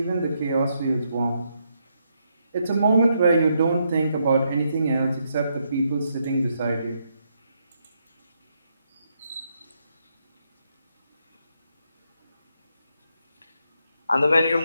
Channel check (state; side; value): inverted; both; correlation -0.78